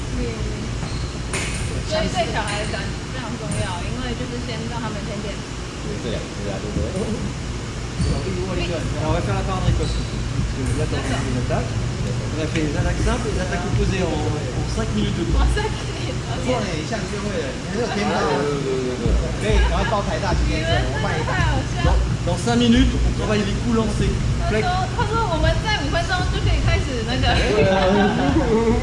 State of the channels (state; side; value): identical; both; correlation 1.00